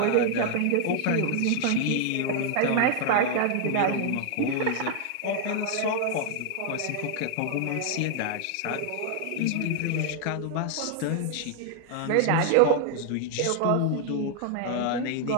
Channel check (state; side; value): different; both; correlation 0.00